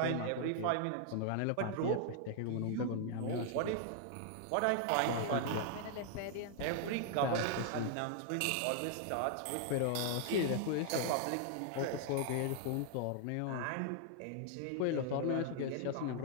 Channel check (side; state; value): both; different; correlation 0.00